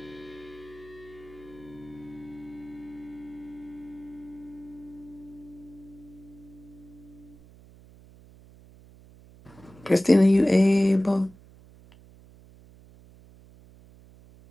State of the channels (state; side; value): noise; right; hum, 22 dB below the sound